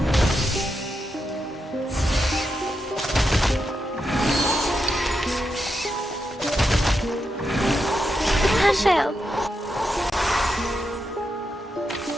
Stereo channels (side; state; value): both; normal; correlation 0.85